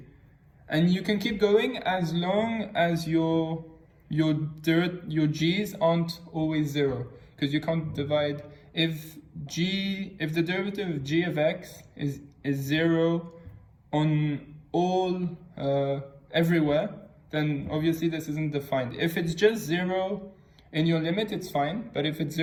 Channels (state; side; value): identical; both; correlation 1.00